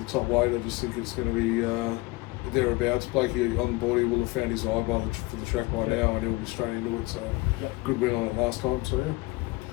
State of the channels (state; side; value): quieter; right; 21.9 dB